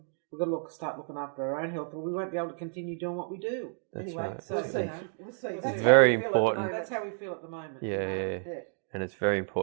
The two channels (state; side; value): silent; left; 57 dB below the other